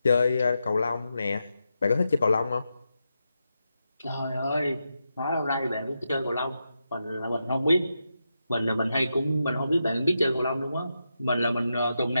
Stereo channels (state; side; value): inverted; both; correlation -0.87